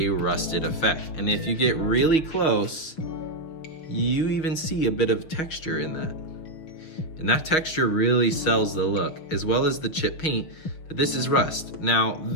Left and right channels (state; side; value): late; right; 6.3 ms